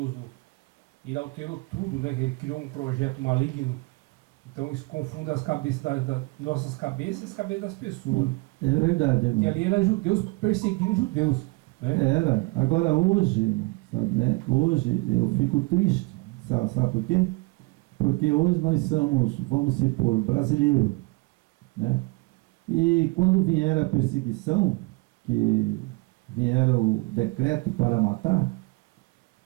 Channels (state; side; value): quieter; left; 24.9 dB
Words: ele alterou tudo, né? Ele criou um projeto maligno. Então isso confunde as cabeças das nossas cabeças e as cabeças das pessoas. É verdade, irmão. Que ali eram judeus perseguindo judeus. Né? Era. Agora hoje, sabe, né? Hoje eu fico triste. Sabe por quê? Porque hoje nós somos, vamos supor, brasileiros. Né? E quando vier a perseguição, que vier o decreto para matar,